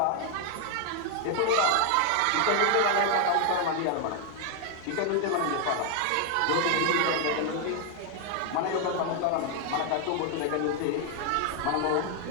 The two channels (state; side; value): different; both; correlation 0.00